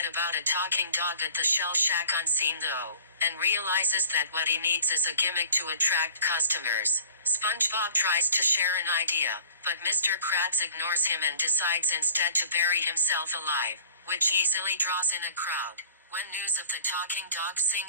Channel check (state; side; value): inverted; both; correlation -0.47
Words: about a talking dog at the Shell Shack unseen though, and realizes that what he needs is a gimmick to attract customers. SpongeBob tries to share an idea, but Mr. Krabs ignores him and decides instead to bury himself alive, which easily draws in a crowd. When news of the talking dog